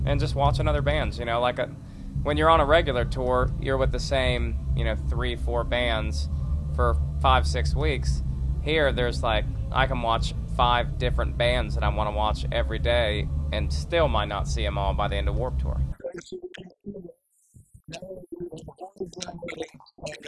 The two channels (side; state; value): both; identical; correlation 1.00